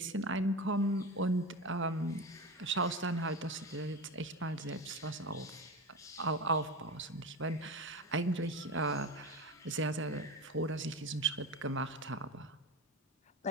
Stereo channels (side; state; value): both; normal; correlation 0.25